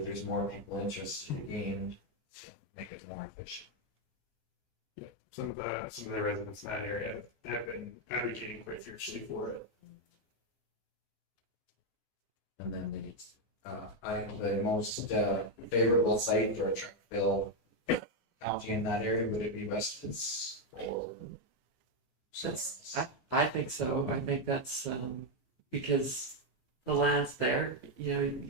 there's more people interested again, to make it more efficient. Yeah, some of the residents in that area have been advocating quite fiercely for it. And then the most favorable site for a truck fill county in that area, would it be Westwoods or? I think so. I think that's because the land's there. You know, you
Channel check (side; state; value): right; late; 14 ms